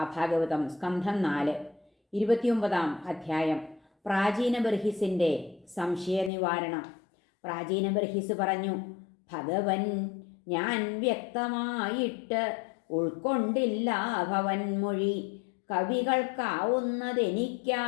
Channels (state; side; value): drops out; right; at 6.3 s